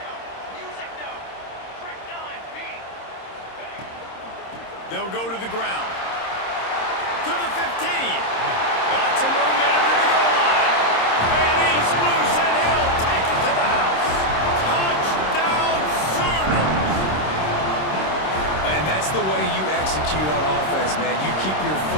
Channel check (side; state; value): right; late; 26 ms